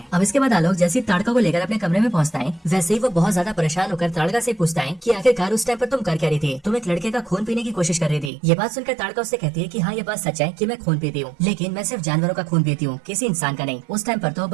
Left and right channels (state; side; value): drops out; left; at 8.3 s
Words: अब इसके बाद आलोक जैसी ताड़का को लेकर अपने कमरे में पहुंचता है, वैसे ही वो बहुत ज्यादा परेशान होकर ताड़का से पूछता है कि आखिरकार उस टाइम पर तुम कर क्या रही थी? तुम एक लड़के का खून पीने की कोशिश कर रही थी। ये बात सुनकर ताड़का उससे कहती है कि हाँ, ये बात सच है कि मैं खून पीती हूँ, लेकिन मैं सिर्फ जानवरों का खून पीती हूँ, किसी इंसान का नहीं। उस टाइम पर तो